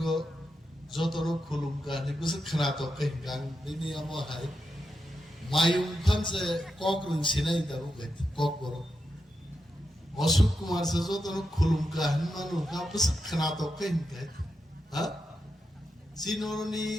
যতন খুলুমকা নিবুসে খনাতকে গাং দিনি আমহাই মায়ুং ফানসে কক রুংसिनाय दाबो गैत কক बरो अशोक कुमार से যতন খুলুমকা হনমানু কা বুস খনাতকে গैत हा सिनोरनी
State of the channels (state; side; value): normal; both; correlation 0.86